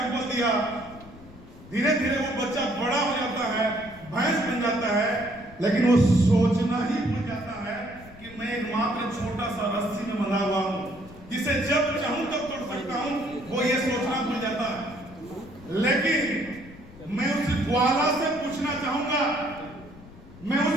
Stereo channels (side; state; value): left; noise; rumble, 19 dB below the sound